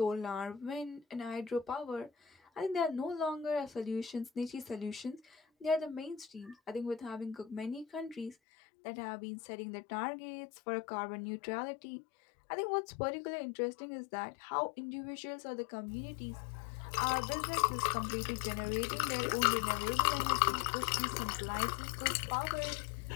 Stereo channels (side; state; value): right; drops out; at 8.3 s